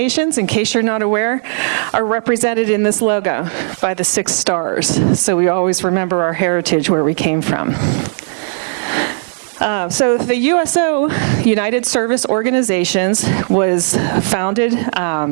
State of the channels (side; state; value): left; silent; 66 dB below the other